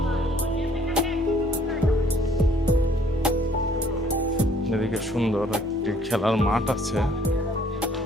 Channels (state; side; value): normal; both; correlation 0.61